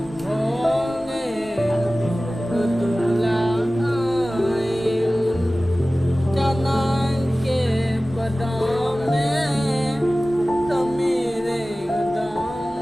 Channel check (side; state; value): both; normal; correlation 0.97